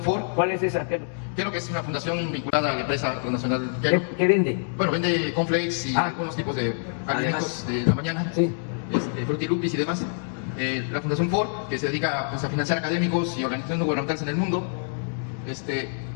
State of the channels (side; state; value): right; silent; digital silence